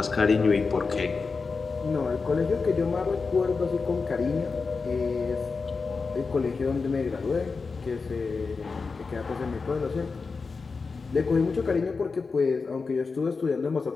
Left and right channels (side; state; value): right; quieter; 4.6 dB